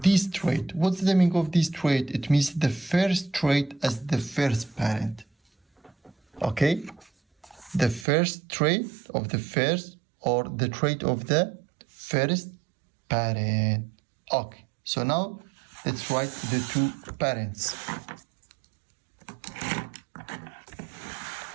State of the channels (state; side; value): drops out; left; at 8.1 s